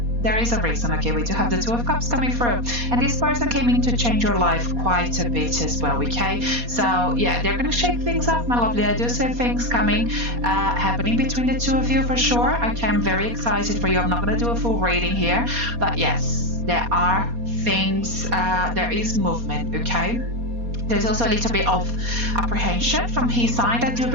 there is a reason, okay? We do have the Two of Cups coming through, and this person came in to change your life quite a bit as well, okay? So yeah, they're gonna shake things up, my lovely. I do see things coming, happening between the two of you for sure. Okay, I'm very excited for you. I'm not gonna do a full reading here, but yes, there are things, there is movement, okay? There's also a little bit of apprehension from his side, I do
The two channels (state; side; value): late; left; 4.2 ms